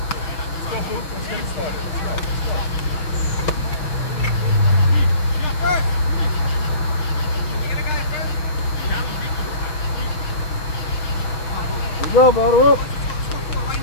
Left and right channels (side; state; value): right; late; 6.2 ms